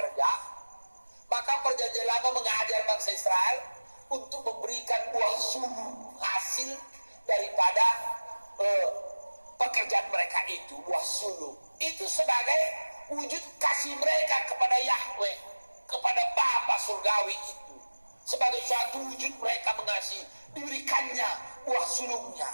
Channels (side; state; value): both; inverted; correlation -1.00